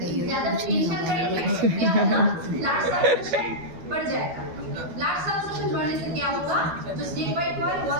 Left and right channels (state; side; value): late; left; 12 ms